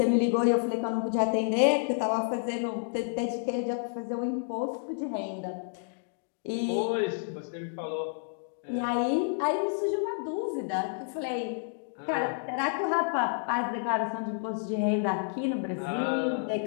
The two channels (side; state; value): right; silent; digital silence